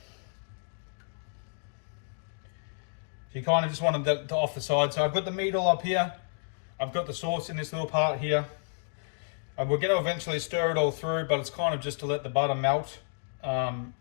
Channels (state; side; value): silent; right; digital silence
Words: So you kind of just want them to off the side. So I've got the meat all up here. I've got the sauce in this little part here. And we're going to eventually stir it all through, but it's kind of just to let the butter melt and